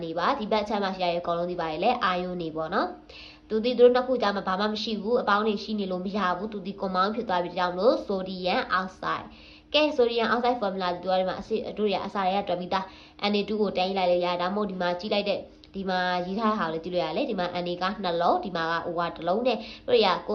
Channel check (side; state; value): both; identical; correlation 1.00